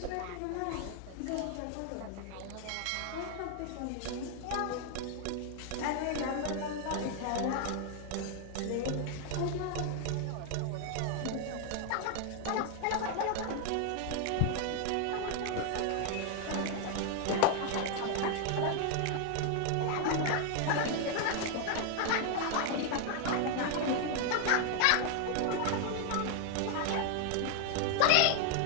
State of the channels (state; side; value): different; both; correlation 0.00